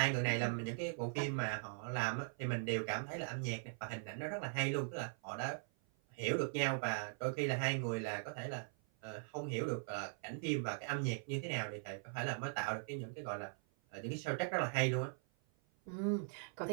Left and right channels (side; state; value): left; silent; 51 dB below the other